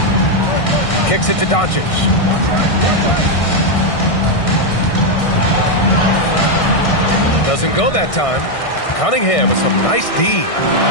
Kicks it to Doncic. Doesn't go that time. Cunningham with some nice D.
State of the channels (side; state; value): right; late; 1.6 ms